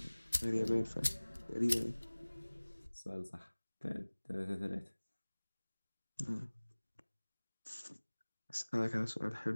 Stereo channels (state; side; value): inverted; both; correlation -1.00